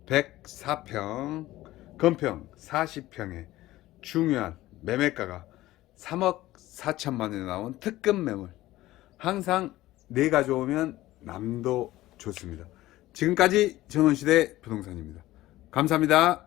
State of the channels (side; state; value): right; quieter; 16.4 dB